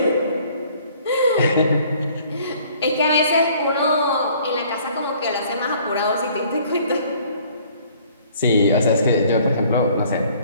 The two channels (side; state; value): both; inverted; correlation -0.57